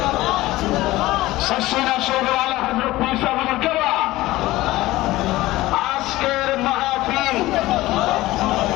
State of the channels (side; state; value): right; quieter; 17.7 dB